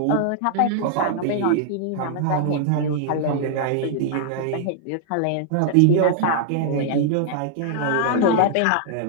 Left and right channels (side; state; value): both; different; correlation -0.01